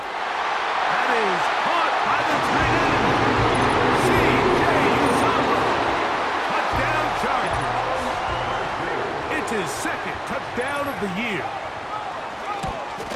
That is caught by the tight end. C.J. Uzomah. Touchdown Chargers. It's his 2nd touchdown of the year.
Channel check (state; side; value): identical; both; correlation 1.00